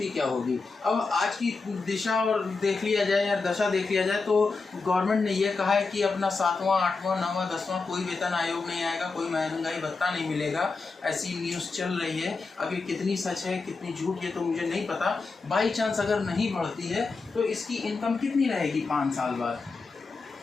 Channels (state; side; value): quieter; right; 4.2 dB